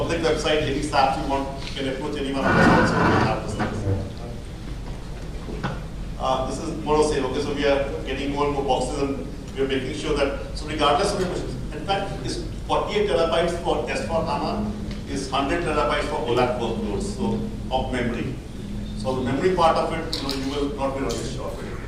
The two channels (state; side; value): identical; both; correlation 1.00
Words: website, any staff you want, you can approach anyone of us also to have this thing. This is more of saying, okay, so we are getting more and more boxes, and we are making sure that, so regardless of your questions, in fact, it's 48 terabytes for S4 HANA, is 100 terabytes for OLAP workloads, so of memory. So the memory part of it, you will not be really sure of it.